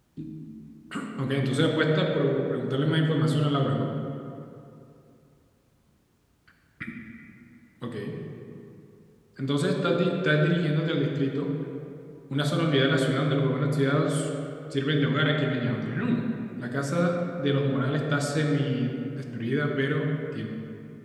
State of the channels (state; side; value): identical; both; correlation 1.00